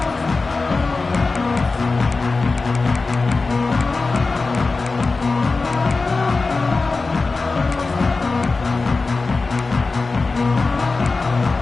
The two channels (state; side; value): quieter; right; 3.9 dB